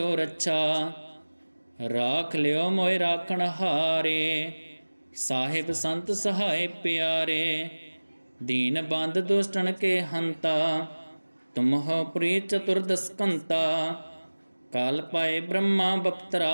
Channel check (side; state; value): both; inverted; correlation -1.00